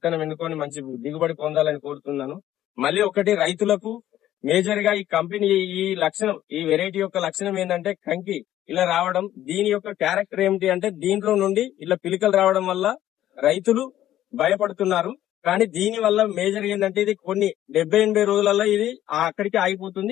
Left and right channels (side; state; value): right; quieter; 12.8 dB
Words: ఎన్నుకొని మంచి దిగుబడి పొందాలని కోరుతున్నాను. మళ్ళీ ఒకటి, రైతులకు మేజర్ గా ఈ కంపెనీ ఈ వెరైటీ యొక్క లక్షణం ఏంటంటే కంకి ఇలా రావడం. దీని యొక్క క్యారెక్టర్ ఏమిటి అంటే దీంట్లో నుండి ఇలా పిలికలు రావడం వల్ల రైతులు భయపడుతున్నారు. కానీ దీని వల్ల మేజర్ ఏంటంటే ఇది కొన్ని 70-80 రోజులలో ఇది అక్కడికి